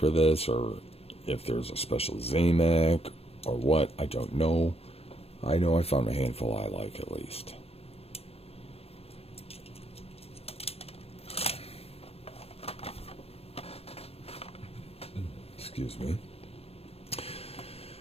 this, or if there's a special Zamac or what. I don't know. I know I found a handful I like at least. Excuse me.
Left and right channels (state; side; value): late; right; 0.29 ms